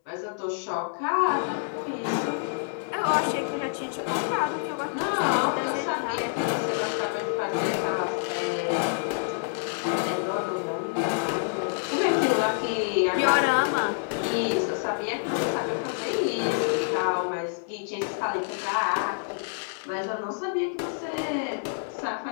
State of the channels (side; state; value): right; silent; digital silence